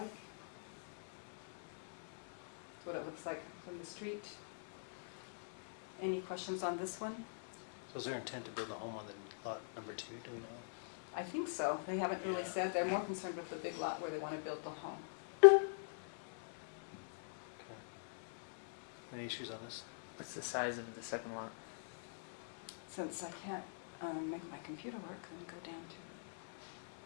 That's what it looks like from the street. Any questions on this one? So is there intent to build a home on the lot number 2, do we know? I think so. They haven't really Yeah. said. They're more concerned with the big lot where they want to build the home. Okay. Any issues on this? What's the size of the second lot? Since I can't make my computer work, let me go down to,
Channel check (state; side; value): silent; right; digital silence